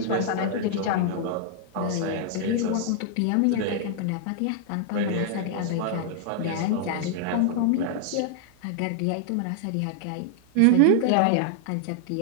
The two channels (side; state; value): both; different; correlation -0.01